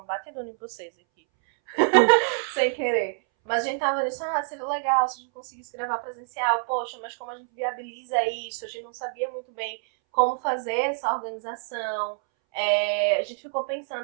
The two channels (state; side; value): silent; left; 61 dB below the other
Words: batidona em vocês aqui. Sem querer. Mas a gente tava nisso, seria legal se a gente conseguisse gravar presencial. Poxa, mas como a gente viabiliza isso? A gente não sabia muito bem como fazer essa organização. A gente ficou